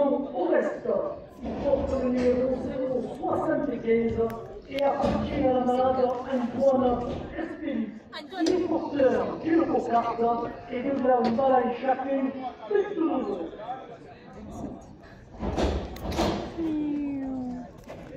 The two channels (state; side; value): identical; both; correlation 1.00